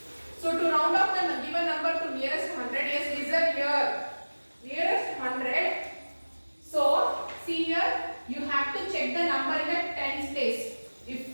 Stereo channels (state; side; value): inverted; both; correlation -1.00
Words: So to round off the given number to nearest 100, yes, listen here. Nearest 100. So see here, you have to check the number in the tens place.